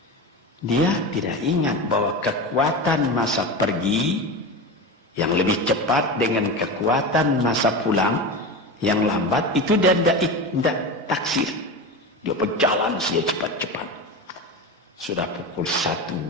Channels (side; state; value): both; normal; correlation 0.24